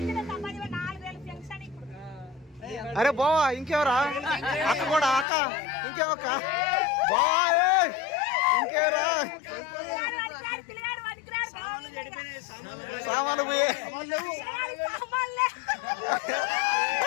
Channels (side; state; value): right; drops out; at 5.2 s